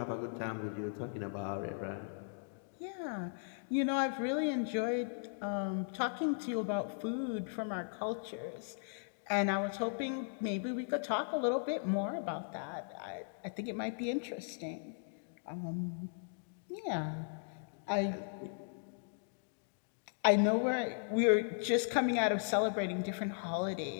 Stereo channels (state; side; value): silent; right; digital silence